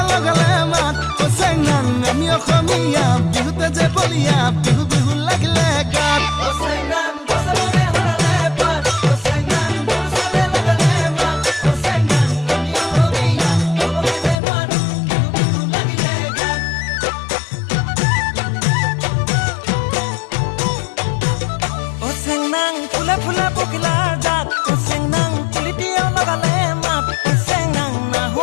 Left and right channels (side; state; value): right; drops out; at 14.4 s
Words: লগালে মাত চেংনাং আমি অসমীয়া বিহুতে যে বলিয়া বিহু বিহু লাগিলে গাত